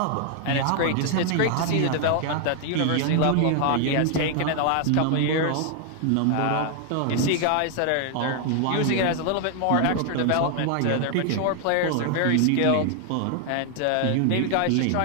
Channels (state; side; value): different; both; correlation 0.00